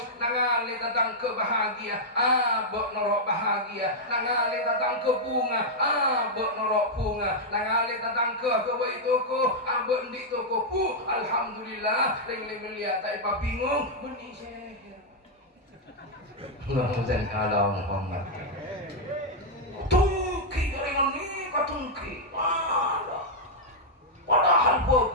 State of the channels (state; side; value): normal; both; correlation -0.04